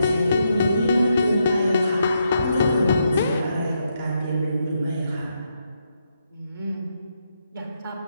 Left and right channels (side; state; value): both; inverted; correlation -0.80